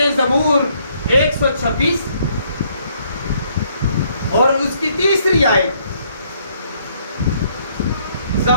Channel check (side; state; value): both; inverted; correlation -0.68